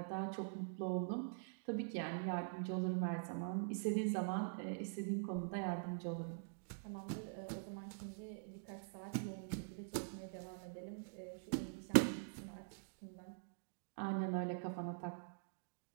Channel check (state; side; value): silent; left; digital silence